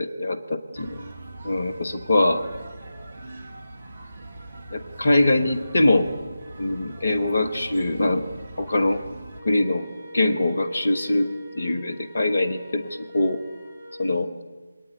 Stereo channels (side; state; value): both; inverted; correlation -0.92